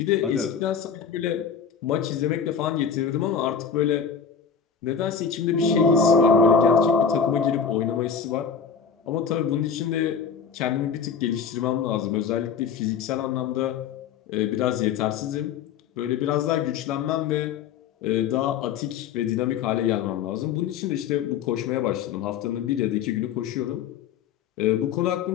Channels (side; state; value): right; quieter; 6.9 dB